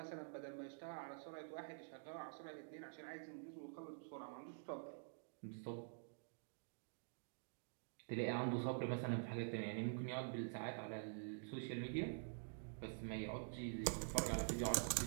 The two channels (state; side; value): silent; left; digital silence